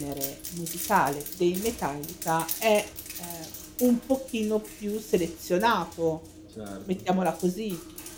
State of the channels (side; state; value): both; identical; correlation 1.00